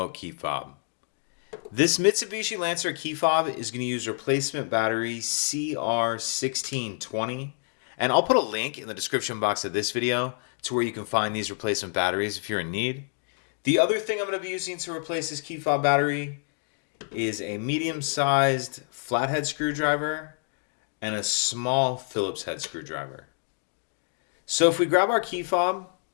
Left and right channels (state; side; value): silent; right; 55 dB below the other